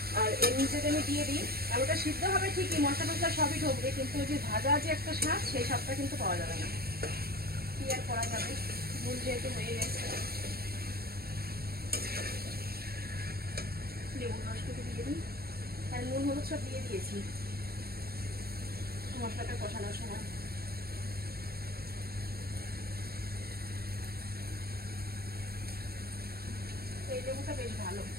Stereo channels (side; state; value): left; late; 0.45 ms